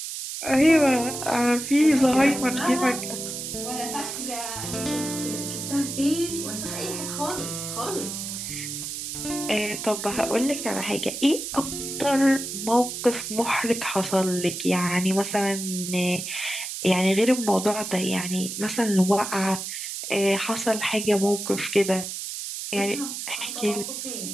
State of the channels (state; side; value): noise; right; hiss, 6 dB below the sound